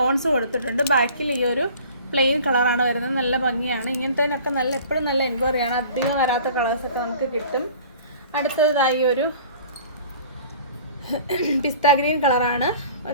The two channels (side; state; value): both; inverted; correlation -0.46